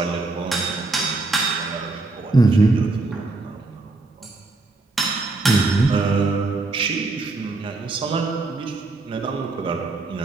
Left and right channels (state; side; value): quieter; left; 3.3 dB